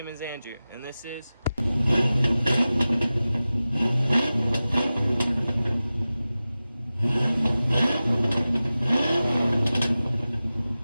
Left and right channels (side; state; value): both; inverted; correlation -0.96